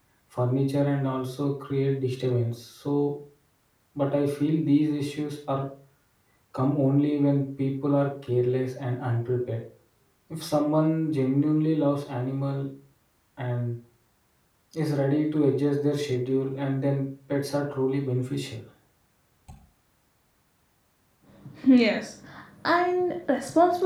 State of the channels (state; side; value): identical; both; correlation 1.00